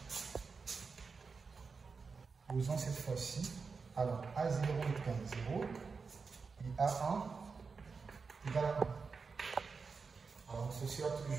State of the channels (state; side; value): quieter; left; 4.9 dB